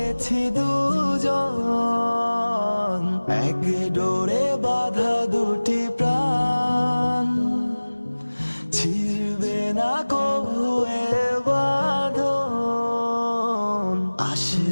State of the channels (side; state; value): both; inverted; correlation -1.00